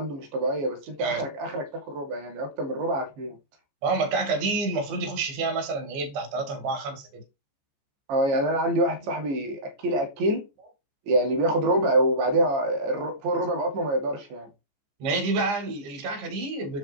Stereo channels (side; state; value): left; late; 14 ms